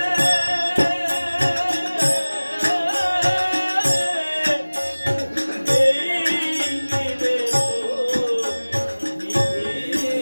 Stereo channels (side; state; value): both; inverted; correlation -1.00